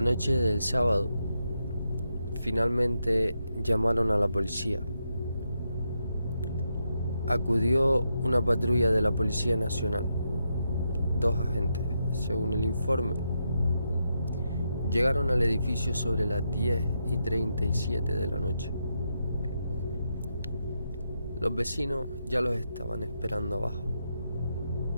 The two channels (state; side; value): inverted; both; correlation -0.83